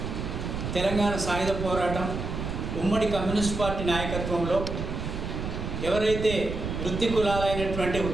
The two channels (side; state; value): right; noise; rumble, 5 dB below the sound